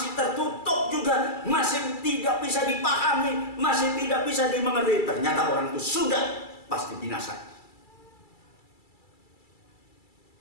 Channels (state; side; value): late; right; 2.3 ms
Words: tertutup juga, masih tidak bisa dipahami, masih tidak bisa dimengerti, ternyata orang itu sudah pasti binasa.